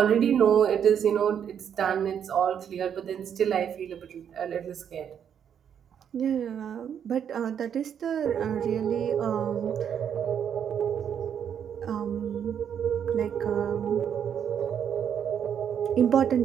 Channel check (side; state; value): left; quieter; 8.4 dB